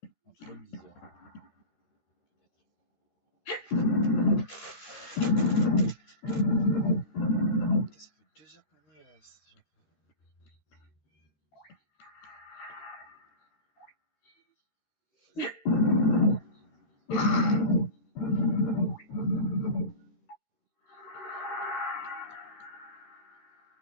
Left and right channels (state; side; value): late; right; 13 ms